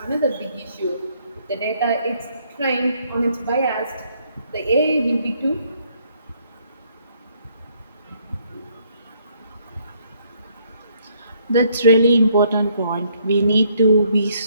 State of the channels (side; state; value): both; inverted; correlation -0.68